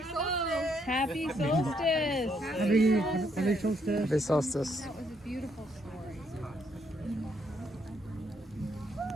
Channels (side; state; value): both; normal; correlation 0.73